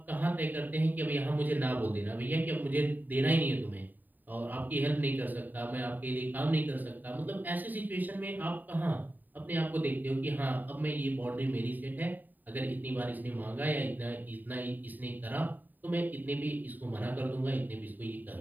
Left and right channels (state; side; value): late; left; 0.088 ms